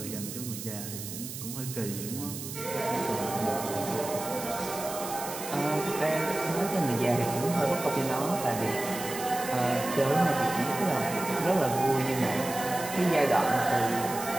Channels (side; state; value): right; noise; hiss, 9 dB below the sound